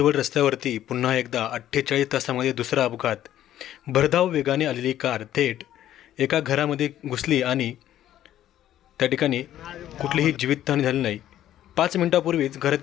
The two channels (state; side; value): quieter; right; 12.2 dB